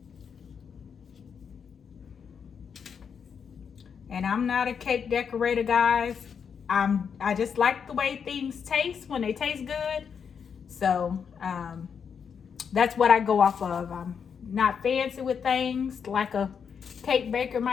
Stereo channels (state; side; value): quieter; right; 6.8 dB